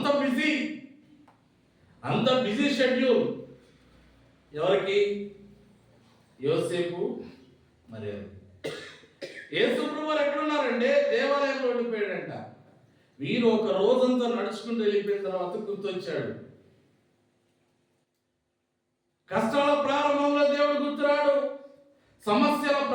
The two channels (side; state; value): both; identical; correlation 1.00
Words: బిజీ షెడ్యూల్. ఎవరికి? యోసేపు మరి యేసు ప్రభువు ఎక్కడున్నారంటే దేవాలయంలో ఉండిపోయాడంట. వీరు ఒక రోజంతా నడుచుకుంటూ వెళ్ళిపోయిన తర్వాత గుర్తొచ్చాడు. కష్టాల ప్రారంభంలో దేవుడు గుర్తురాడు, సమస్యల